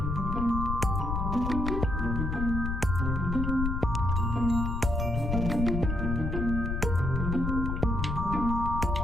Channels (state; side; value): noise; left; rumble, 1 dB below the sound